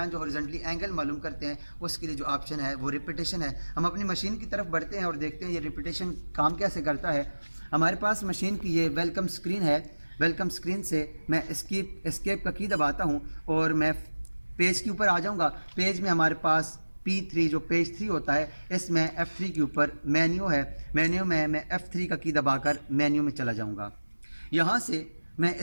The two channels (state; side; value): inverted; both; correlation -1.00